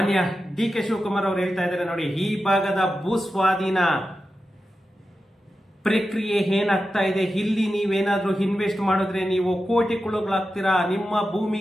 DK ಶಿವಕುಮಾರ್ ಅವರು ಹೇಳ್ತಾ ಇದ್ದಾರೆ ನೋಡಿ, ಈ ಭಾಗದ ಭೂಸ್ವಾಧೀನ ಪ್ರಕ್ರಿಯೆ ಏನಾಗ್ತಾ ಇದೆ, ಇಲ್ಲಿ ನೀವೇನಾದ್ರೂ ಇನ್ವೆಸ್ಟ್ ಮಾಡಿದ್ರೆ ನೀವು ಕೋಟಿಗಳಾಗ್ತೀರಾ, ನಿಮ್ಮ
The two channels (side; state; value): both; normal; correlation 0.91